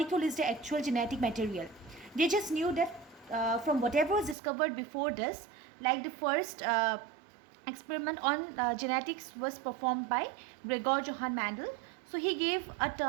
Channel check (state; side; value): drops out; left; at 4.4 s